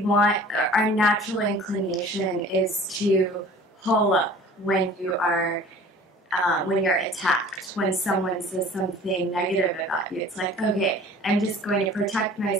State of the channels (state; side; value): normal; both; correlation 0.46